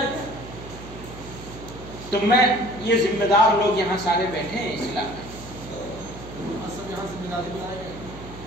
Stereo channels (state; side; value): noise; right; hum, 14 dB below the sound